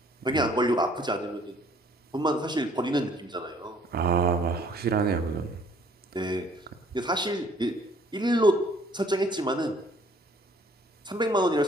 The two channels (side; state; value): both; normal; correlation 0.59